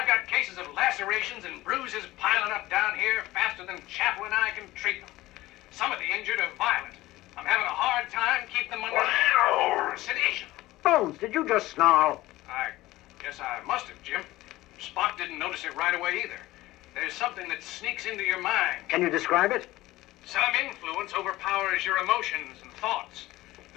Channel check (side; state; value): right; quieter; 17.5 dB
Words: got cases of lacerations and bruises piling up down here faster than Chaplin and I can treat them. Some of the injured are violent. I'm having a hard time keeping them under sedation. Bones, did you just snarl? I guess I must have, Jim. Spock didn't notice it right away either. There's something that sneaks into your mind. Can you describe it? Some influence overpowers your emotions and thoughts.